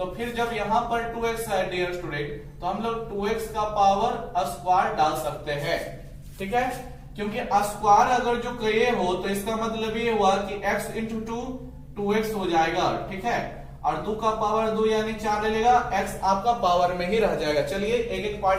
फिर जब यहां पर 2x है डियर स्टूडेंट तो हम लोग 2x का पावर स्क्वायर डाल सकते हैं। ठीक है, क्योंकि स्क्वायर अगर जो किए हो तो इसका मतलब ये हुआ कि x इंटू 2 2x हो जाएगा। ठीक है, और 2 का पावर 2 यानी 4 ले लेगा, x आपका पावर में ही रह जाएगा। चलिए एक एक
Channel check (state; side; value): identical; both; correlation 1.00